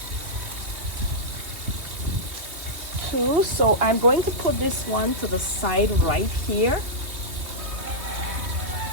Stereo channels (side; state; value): left; late; 2.6 ms